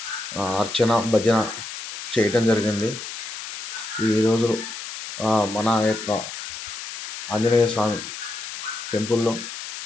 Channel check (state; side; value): noise; left; hiss, 8 dB below the sound